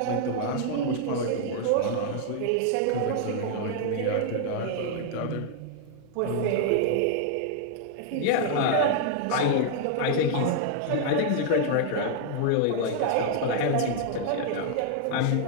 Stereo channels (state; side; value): different; both; correlation -0.01